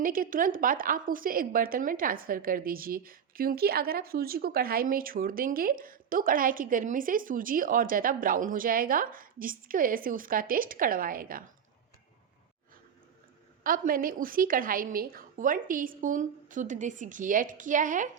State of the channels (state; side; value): quieter; left; 7.8 dB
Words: के तुरंत बाद आप उसे एक बर्तन में ट्रांसफ़र कर दीजिए, क्योंकि अगर आप सूजी को कढ़ाई में छोड़ देंगे तो कढ़ाई की गर्मी से सूजी और ज़्यादा ब्राउन हो जाएगा, जिसकी वजह से उसका टेस्ट कड़वा आएगा। अब मैंने उसी कढ़ाई में 1 टीस्पून शुद्ध देसी घी ऐड किया है,